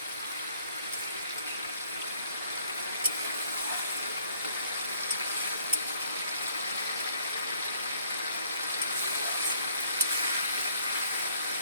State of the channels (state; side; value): inverted; both; correlation -0.64